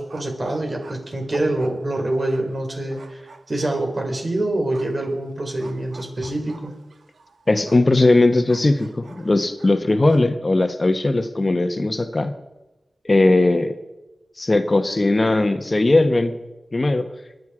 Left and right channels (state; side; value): normal; both; correlation 0.97